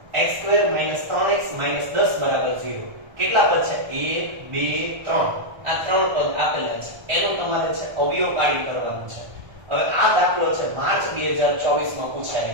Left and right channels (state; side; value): late; left; 1.3 ms